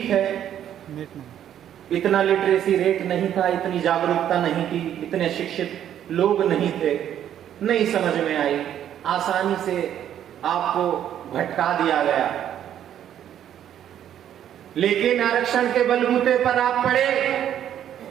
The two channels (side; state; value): left; quieter; 10.4 dB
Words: है, इतना लिटरेसी रेट नहीं था, इतनी जागरूकता नहीं थी, इतने शिक्षित लोग नहीं थे, नहीं समझ में आई, आसानी से आपको भटका दिया गया। लेकिन आरक्षण के बलबूते पर आप पढ़े